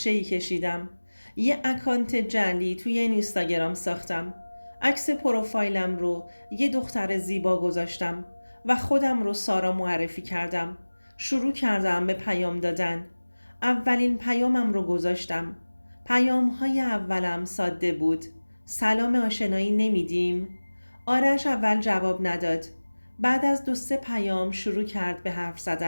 کشیدم. یه اکانت جعلی توی اینستاگرام ساختم. عکس پروفایلم رو یه دختر زیبا گذاشتم و خودم رو سارا معرفی کردم. شروع کردم به پیام دادن. اولین پیامم رو گذاشتم. پیام‌های اولم ساده بود. سلام آشنایی نمیدیم؟ آرش اول جواب نداد. بعد از 2-3 پیام شروع کرد به حرف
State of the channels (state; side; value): inverted; both; correlation -1.00